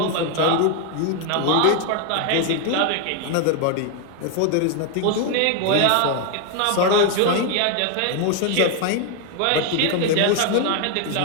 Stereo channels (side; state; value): both; different; correlation 0.01